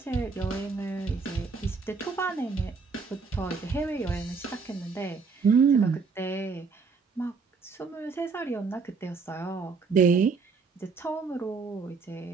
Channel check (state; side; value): quieter; left; 4.8 dB